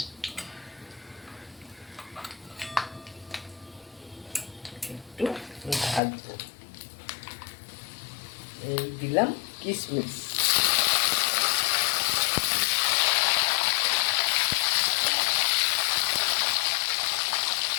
একটু ভাজবো। এই দিলাম কিশমিশ,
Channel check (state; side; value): drops out; right; at 6.0 s